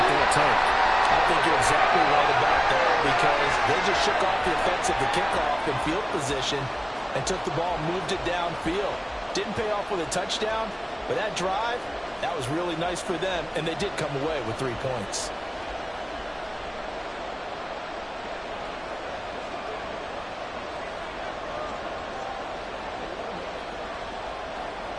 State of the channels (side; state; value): both; identical; correlation 1.00